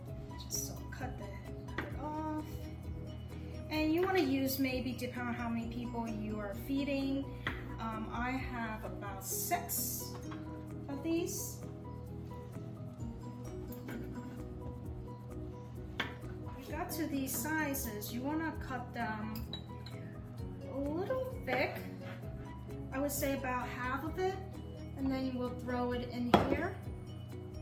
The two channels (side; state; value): both; identical; correlation 1.00